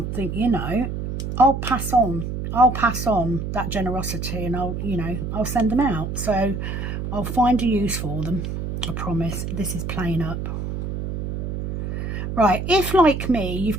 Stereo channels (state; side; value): noise; right; hum, 4 dB below the sound